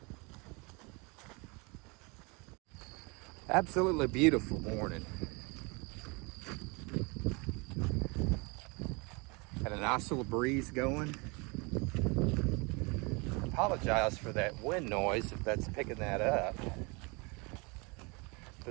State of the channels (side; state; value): left; quieter; 29.0 dB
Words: Absolutely beautiful morning. Had a nice little breeze going. Apologize for that wind noise if that's picking that up.